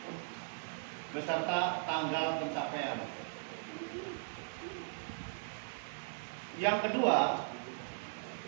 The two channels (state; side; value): silent; left; digital silence